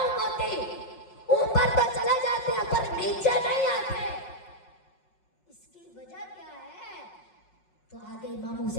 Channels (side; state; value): right; late; 5.4 ms